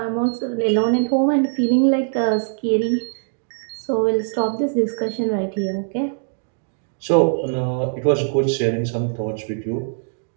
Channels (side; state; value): left; silent; digital silence